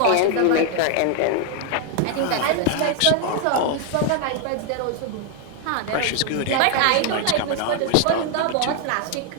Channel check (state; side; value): different; both; correlation 0.00